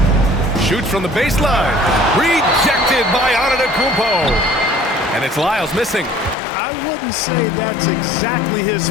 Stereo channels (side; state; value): right; drops out; at 6.4 s